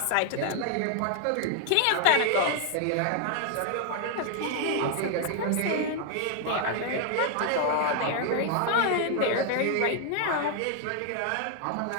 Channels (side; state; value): both; different; correlation 0.00